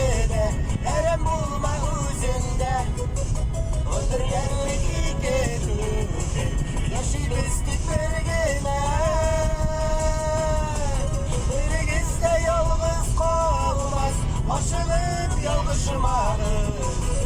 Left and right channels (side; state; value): both; identical; correlation 1.00